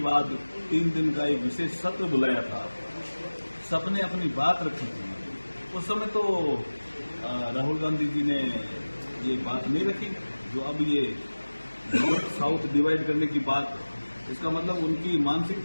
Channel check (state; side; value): inverted; both; correlation -1.00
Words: बाद 3 दिन का एक विशेष सत्र बुलाया था, सबने अपनी बात रखी थी। उस समय तो राहुल गांधी जी ने ये बात नहीं रखी जो अब ये नॉर्थ साउथ डिवाइड करने की बात, इसका मतलब उनकी